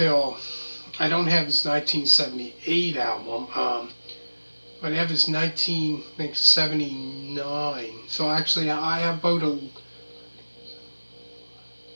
I don't have his 1978 album, but I have his 1979. So actually I have about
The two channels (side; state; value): both; inverted; correlation -1.00